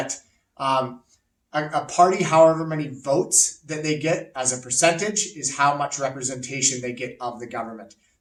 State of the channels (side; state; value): both; identical; correlation 1.00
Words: a party, however many votes that they get as a percentage, is how much representation they get of the government.